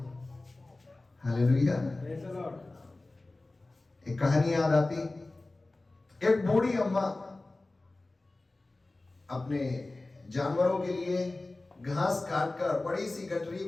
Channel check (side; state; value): right; quieter; 3.0 dB